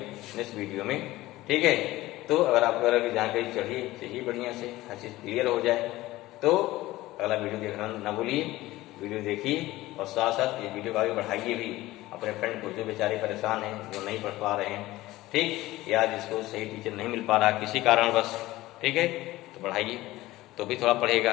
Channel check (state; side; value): quieter; right; 17.5 dB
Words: नेक्स्ट वीडियो में, ठीक है। तो अगर आपको अगर जानकारी चाहिए बढ़िया से, हर चीज क्लियर हो जाए, तो अगला वीडियो देखना ना भूलिए, वीडियो देखिए और साथ साथ ये वीडियो को आगे बढ़ाइए भी अपने फ्रेंड को, जो बेचारे परेशान हैं, जो नहीं पढ़ पा रहे हैं, ठीक, या जिसको सही टीचर नहीं मिल पा रहा किसी कारण बस, ठीक है, तो बढ़ाइए, तो भी थोड़ा